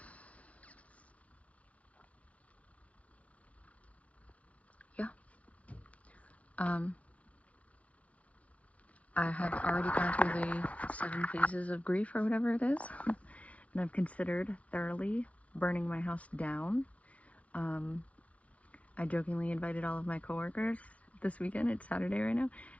yeah. I have already gone through the 7 phases of grief or whatever it is, and I've considered thoroughly burning my house down. I jokingly invited all of my coworkers this weekend, it's Saturday right now,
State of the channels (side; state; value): right; late; 0.065 ms